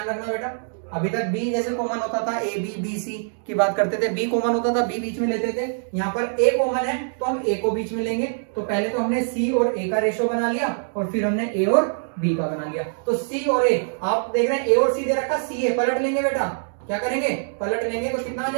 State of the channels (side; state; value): left; silent; digital silence